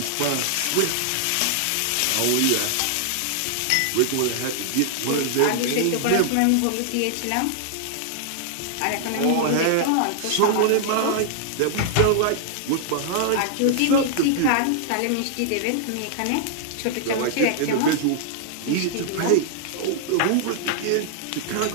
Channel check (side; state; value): both; different; correlation -0.01